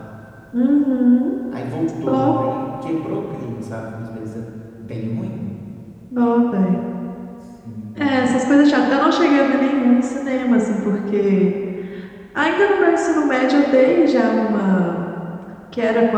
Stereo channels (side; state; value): both; identical; correlation 1.00